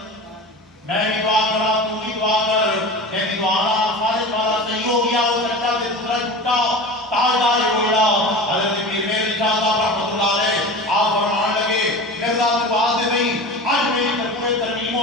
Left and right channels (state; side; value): normal; both; correlation 0.32